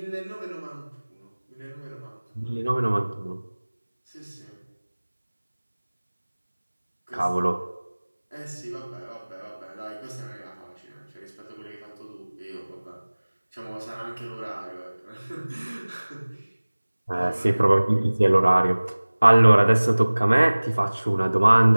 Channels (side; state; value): both; inverted; correlation -1.00